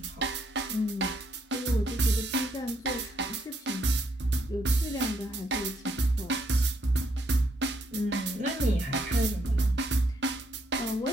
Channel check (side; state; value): both; normal; correlation 0.73